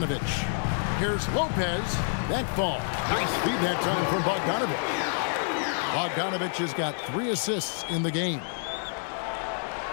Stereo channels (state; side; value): silent; right; digital silence